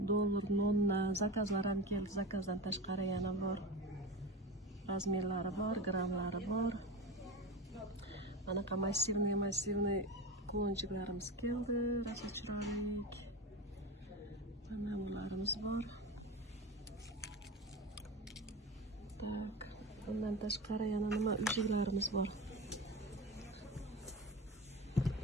Dollar, nonna, zakazlar ham keldi. Zakazdan tashqari yana bor. Razmerlari bor, grammlari bor. Anaqa massivniy kulonchiklarimiz keldi, rosa chiroyli. Mana bularimiz bor. Tak, bundan tashqari yana nima ujiklarimiz bor.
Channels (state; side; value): normal; both; correlation 0.25